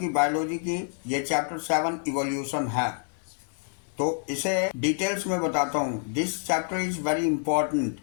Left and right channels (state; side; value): silent; right; 60 dB below the other